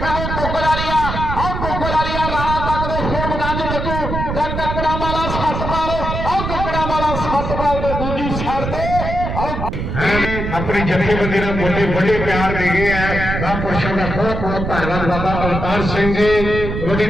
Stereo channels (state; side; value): noise; right; rumble, 4 dB below the sound